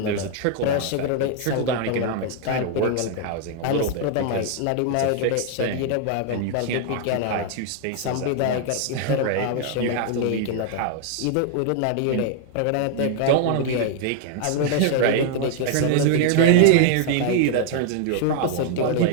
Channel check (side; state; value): both; different; correlation 0.00